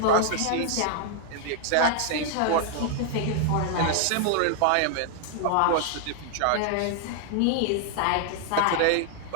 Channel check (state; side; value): different; both; correlation 0.00